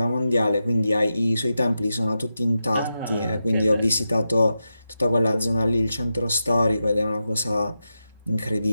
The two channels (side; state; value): both; inverted; correlation -0.89